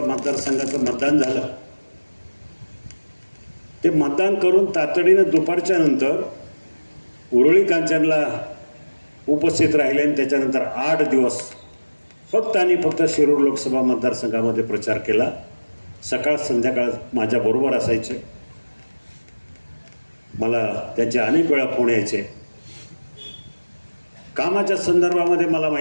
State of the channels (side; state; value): both; inverted; correlation -1.00